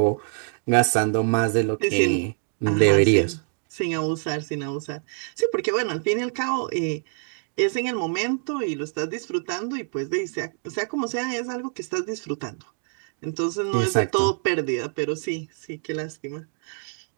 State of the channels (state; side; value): silent; left; 61 dB below the other